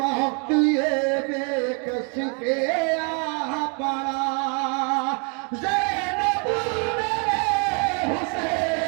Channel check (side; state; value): left; quieter; 37.0 dB